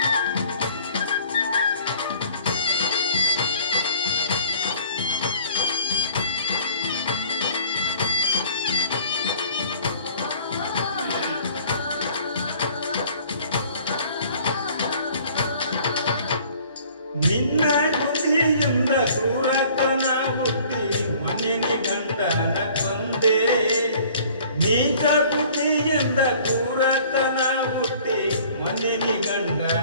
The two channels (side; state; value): both; inverted; correlation -0.53